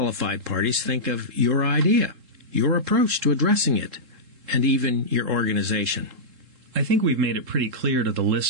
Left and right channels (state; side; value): late; left; 3.7 ms